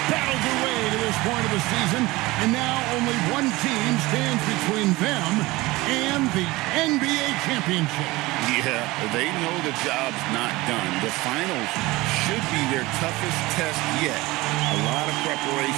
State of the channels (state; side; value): quieter; left; 20.6 dB